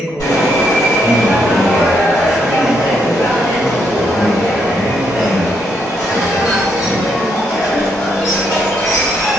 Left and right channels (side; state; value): both; normal; correlation 0.76